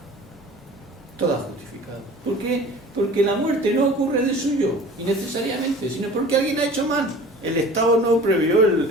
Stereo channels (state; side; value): normal; both; correlation 0.43